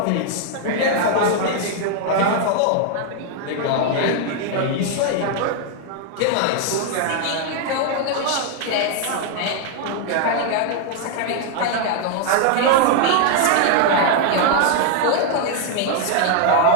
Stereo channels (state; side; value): different; both; correlation 0.00